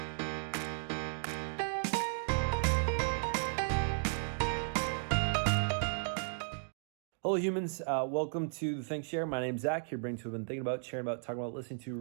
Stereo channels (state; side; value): silent; left; digital silence